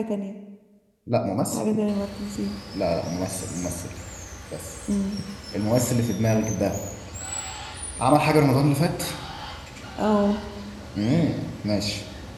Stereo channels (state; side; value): identical; both; correlation 1.00